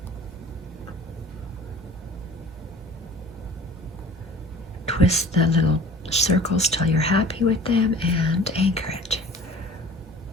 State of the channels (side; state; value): both; normal; correlation 0.45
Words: Twist the little circles till you're happy with them and anchor it.